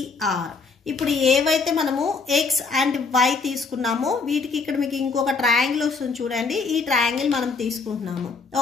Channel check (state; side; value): quieter; right; 4.6 dB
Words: ఇప్పుడు ఏవైతే మనము X అండ్ Y తీసుకున్నామో వీటికి ఇక్కడ మీకు ఇంకొక ట్రయాంగిల్ వస్తుంది చూడండి, ఈ ట్రయాంగిల్ మనం తీసుకుంటున్నాము.